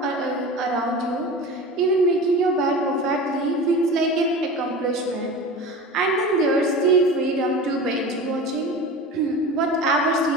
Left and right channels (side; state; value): both; normal; correlation 0.33